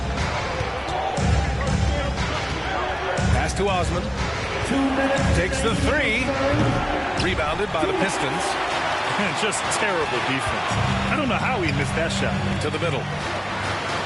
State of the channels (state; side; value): identical; both; correlation 1.00